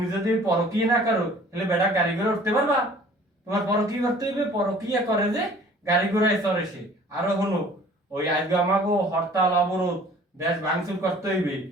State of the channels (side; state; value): both; normal; correlation 0.51